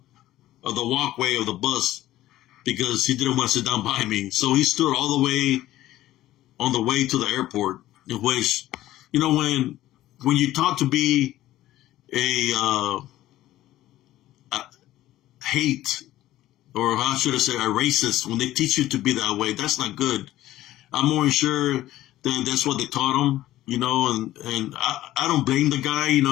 walkway of the bus, because he didn't want to sit down by me. So he stood all the way on the way to the airport, which, when you talk to be a hate, or how should I say, a racist, when they teach you to be that way, that's not good. I'm more sure that that's what they taught him, and I don't blame the guy.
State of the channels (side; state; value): right; quieter; 14.8 dB